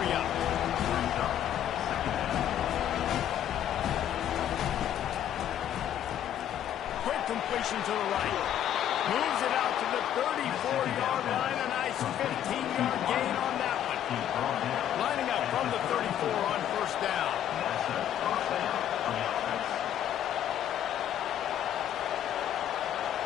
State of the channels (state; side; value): quieter; right; 10.6 dB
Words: Quick completion to the right. Moves it out to the 34-yard line. A nice 15-yard gain on that one. Lining up from the 34 on first down.